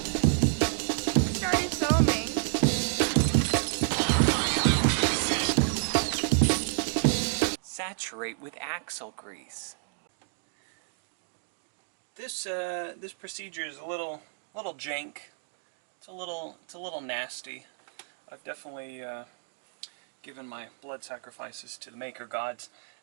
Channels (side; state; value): left; silent; digital silence